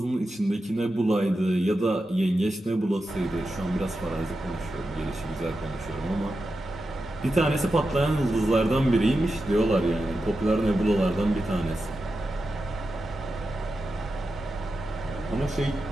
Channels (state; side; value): normal; both; correlation 0.90